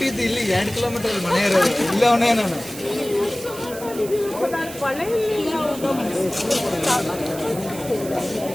ಇಲ್ಲಿ 2 ಕಿಲೋಮೀಟರ್ ಮನೆ ಇರೋದು. ಇಲ್ಲವನೇ ನಾನು.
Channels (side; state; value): right; noise; hiss, 14 dB below the sound